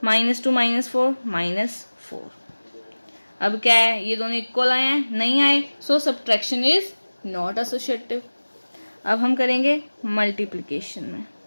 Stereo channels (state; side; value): inverted; both; correlation -1.00